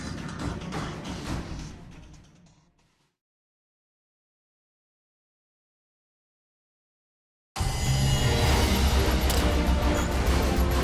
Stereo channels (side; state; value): both; identical; correlation 1.00